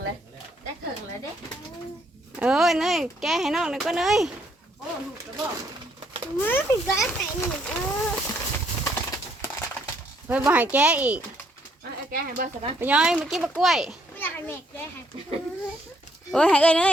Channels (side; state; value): both; normal; correlation 0.70